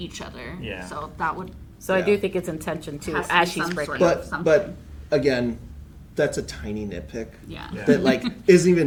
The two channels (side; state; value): both; identical; correlation 1.00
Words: other. Yeah. So that would So I Yeah. do think it's intention too, Has to as be she's some breaking. sort of- But again, that's a tiny nitpick yeah. Yeah. that isn't